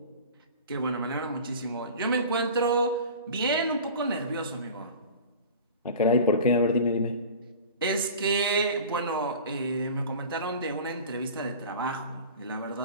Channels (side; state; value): both; inverted; correlation -0.37